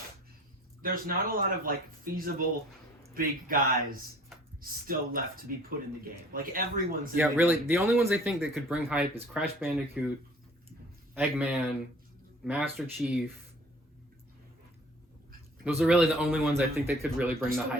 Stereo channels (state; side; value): normal; both; correlation 0.51